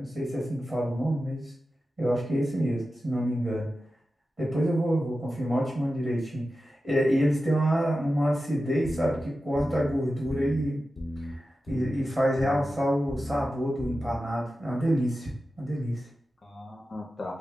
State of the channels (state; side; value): normal; both; correlation 0.93